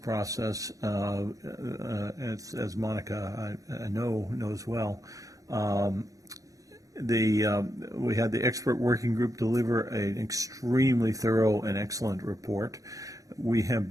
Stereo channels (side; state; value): left; late; 0.16 ms